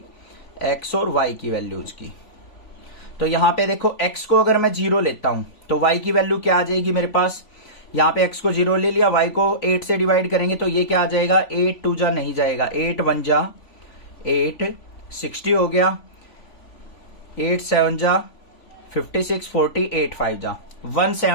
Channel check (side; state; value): right; late; 3.5 ms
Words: x और y की वैल्यूज की। तो यहां पे देखो x को अगर मैं 0 लेता हूं तो y की वैल्यू क्या आ जाएगी मेरे पास? यहां पे x को 0 ले लिया, y को 8 से डिवाइड करेंगे तो ये क्या आ जाएगा? 8 2 जा नहीं जाएगा, 8 1 जा 8, 60 हो गया, 8 7 जा 56, 40, 8 5 जा